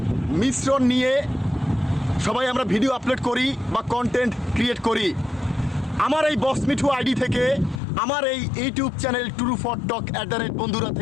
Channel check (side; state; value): right; drops out; at 7.8 s